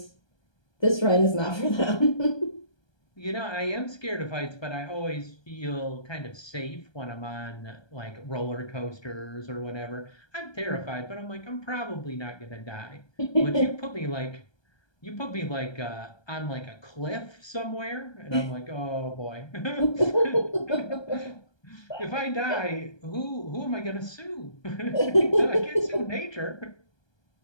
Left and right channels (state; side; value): late; right; 1.2 ms